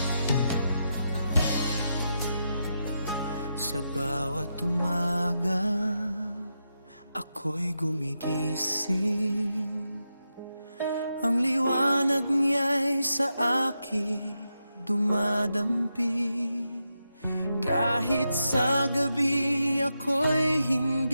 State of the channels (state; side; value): inverted; both; correlation -0.86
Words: sa bawat umaga ako'y gumigising. Ang liwanag niya'y sa akin dumadampi. Kahit sa gabi ako'y